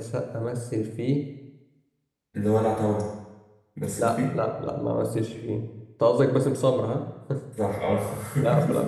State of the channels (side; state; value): both; identical; correlation 1.00